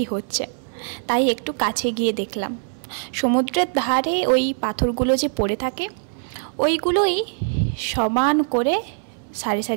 হচ্ছে, তাই একটু কাছে গিয়ে দেখলাম সমুদ্রের ধারে ওই পাথরগুলো যে পড়ে থাকে ওইগুলোই সমান করে সারি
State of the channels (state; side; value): silent; left; digital silence